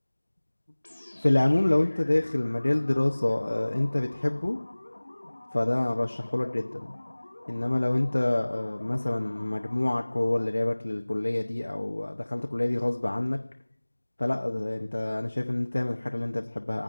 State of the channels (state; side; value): inverted; both; correlation -1.00